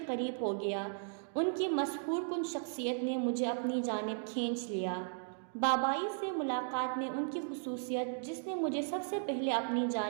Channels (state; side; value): silent; left; digital silence